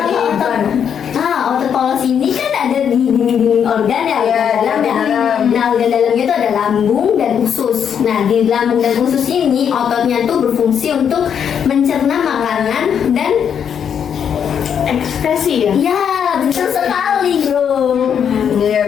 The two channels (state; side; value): quieter; right; 8.0 dB